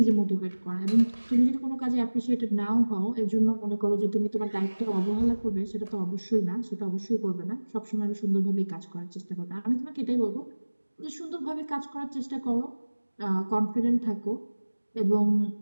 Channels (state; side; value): inverted; both; correlation -1.00